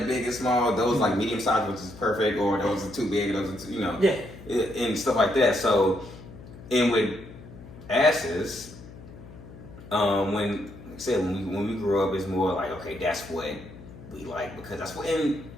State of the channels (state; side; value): noise; left; hum, 17 dB below the sound